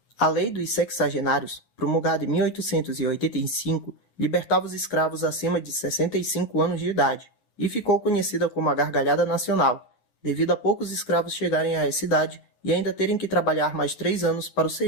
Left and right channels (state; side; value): late; right; 9.6 ms